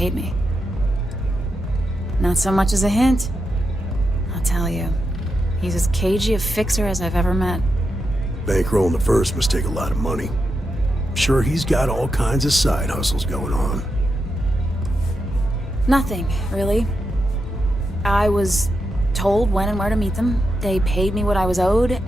me. Not so much as a hint. I'll tell you, he's as cagey a fixer as I've ever met. Bankrolling the first must take a lot of money. I'm sure he's got all kinds of side hustles going on. Nothing, really. I was told when and where to meet them. They paid me what I was owed,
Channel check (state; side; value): normal; both; correlation 0.86